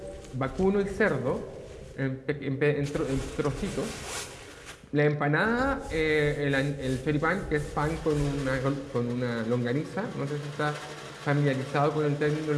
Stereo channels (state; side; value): identical; both; correlation 1.00